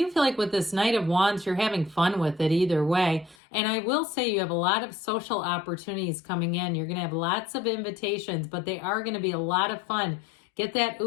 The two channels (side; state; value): right; drops out; at 3.4 s